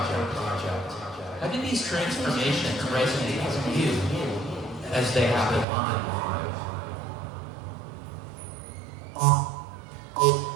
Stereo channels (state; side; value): drops out; left; at 5.7 s